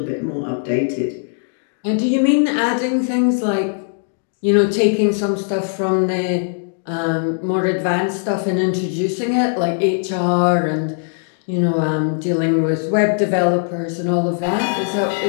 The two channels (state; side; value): silent; right; digital silence